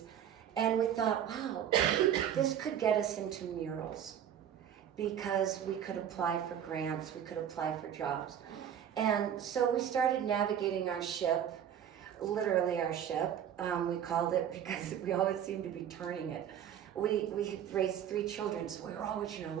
And we thought, wow, this could get us into murals because we could apply for grants, we could apply for jobs. And so we started navigating our ship, literally our ship. We called it because we always seemed to be turning it. We had raised 3 children, so we were always,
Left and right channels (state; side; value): quieter; left; 9.5 dB